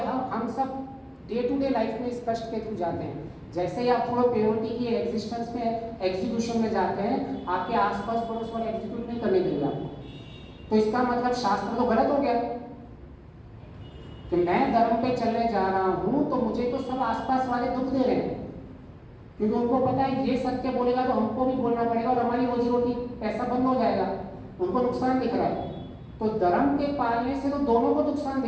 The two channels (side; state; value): both; identical; correlation 1.00